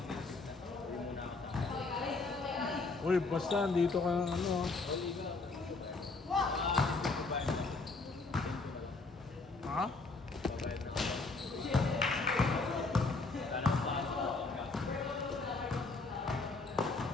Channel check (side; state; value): right; quieter; 3.7 dB